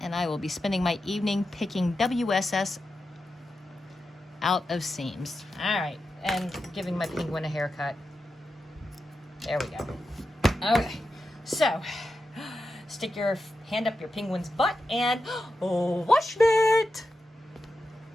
And I will be spending my evening picking WSS out of seams. All right, and giving my penguin a haircut. There we go. Okay, so stick your hand up your penguin's butt and Washmit!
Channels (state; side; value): normal; both; correlation 0.89